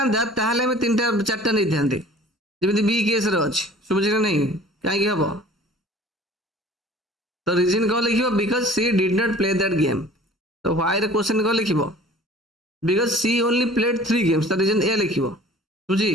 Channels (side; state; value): both; normal; correlation 0.47